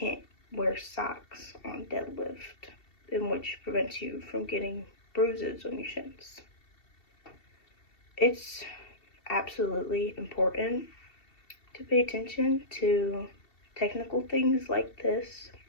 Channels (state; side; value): late; right; 2.7 ms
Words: wear socks on deadlift, in which prevents you from getting bruises on your shins. It's absolutely important to pay attention to technical things like this,